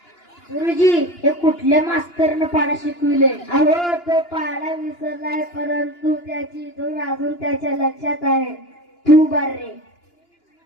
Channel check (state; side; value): late; right; 2.9 ms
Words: गुरुजी, हे कुठल्या मास्तरनं पाडा शिकविले? अहो, तो पाडा विसरलाय, परंतु त्याची धून अजून त्याच्या लक्षात आहे. तू बार रे,